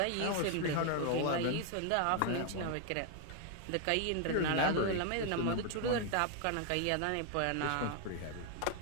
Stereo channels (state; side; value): different; both; correlation 0.00